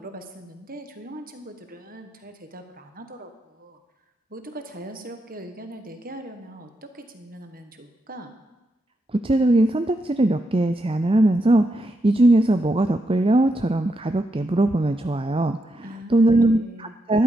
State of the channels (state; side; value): normal; both; correlation 0.83